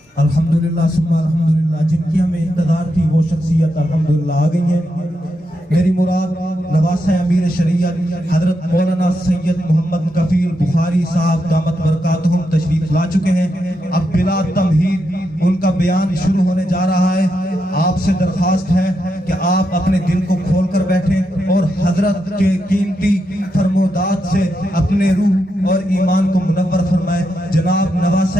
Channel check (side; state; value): both; normal; correlation 0.84